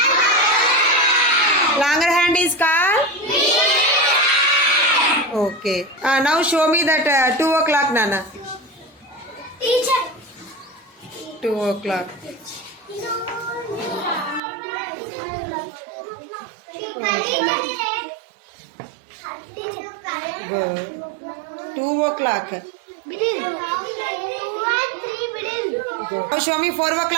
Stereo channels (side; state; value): left; drops out; at 14.4 s